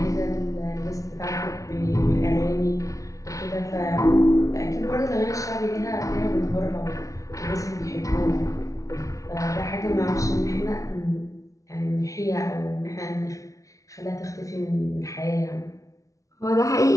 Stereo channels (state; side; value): late; right; 0.16 ms